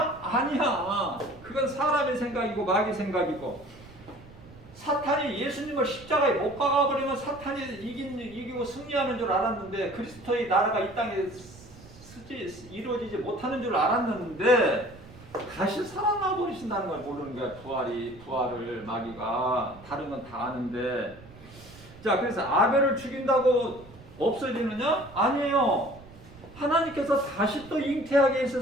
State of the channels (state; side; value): noise; right; rumble, 20 dB below the sound